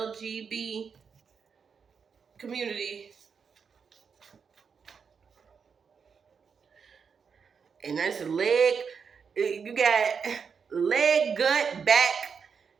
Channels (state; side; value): quieter; left; 6.1 dB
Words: community. And that's you got leg, gut, back,